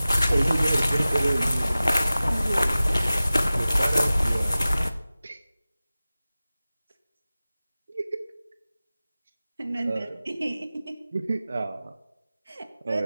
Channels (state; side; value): inverted; both; correlation -0.97